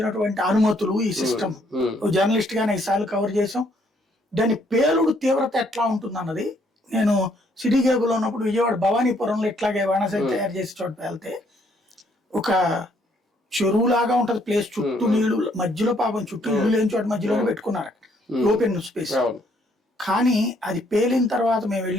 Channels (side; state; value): both; normal; correlation 0.68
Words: అనుమతులు, ఈ సిస్టమ్ జర్నలిస్ట్ గా 5 సార్లు కవర్ చేసాం. దాని పేలుడు తీవ్రత ఎట్లా ఉంటుంది అన్నది నేను సిటీ కేబుల్ ఉన్నప్పుడు విజయవాడ భవానీపురంలో ఇట్లాగే బాణాసంచా తయారు చేసే చోట వెళ్తే ఒక చెరువులాగా ఉంటది ప్లేస్, చుట్టూ నీళ్లు, మధ్యలో పాపం చుట్టూ ఇల్లు లేని చోట మధ్యలో పెట్టుకున్నారు ఓపెన్ స్పేస్. కానీ అది పేలిన తర్వాత మేము